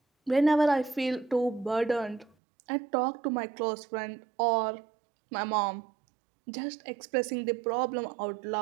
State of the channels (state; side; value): drops out; left; at 2.3 s